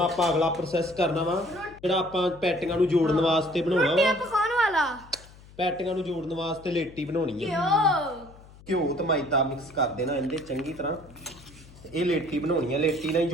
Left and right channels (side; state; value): left; noise; hum, 22 dB below the sound